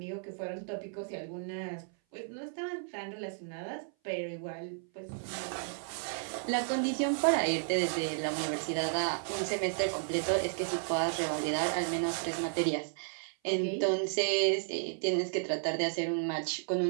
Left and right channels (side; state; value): left; silent; 56 dB below the other